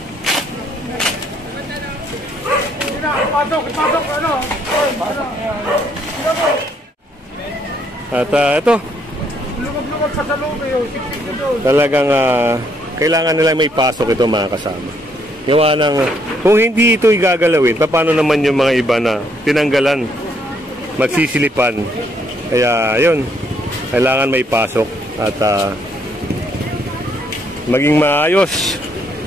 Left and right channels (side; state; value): both; normal; correlation 0.70